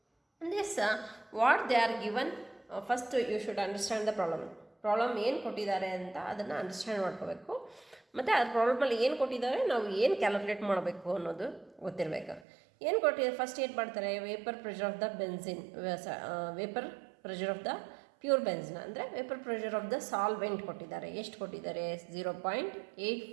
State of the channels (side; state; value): left; drops out; at 12.5 s